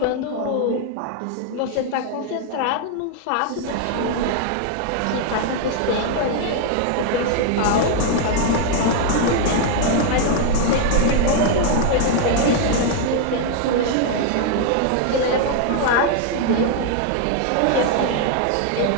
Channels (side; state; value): both; different; correlation 0.00